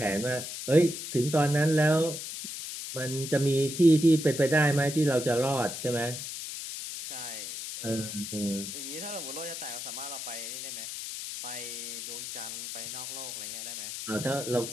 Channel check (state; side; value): noise; left; hiss, 7 dB below the sound